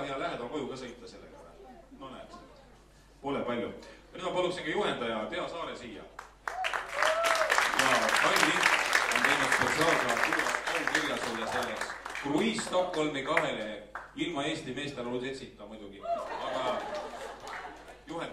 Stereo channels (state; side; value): identical; both; correlation 1.00